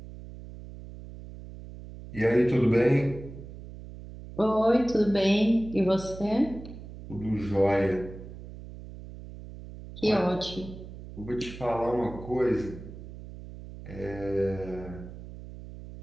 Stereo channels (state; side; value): noise; right; hum, 14 dB below the sound